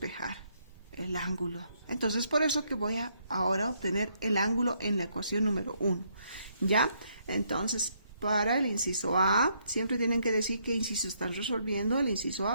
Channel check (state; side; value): inverted; both; correlation -0.73